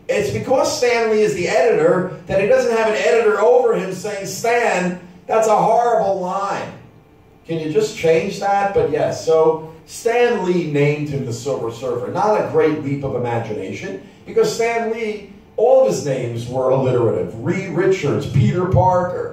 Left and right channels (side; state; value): both; identical; correlation 1.00